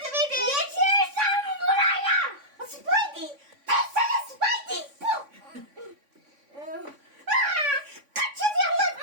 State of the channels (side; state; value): left; late; 3.5 ms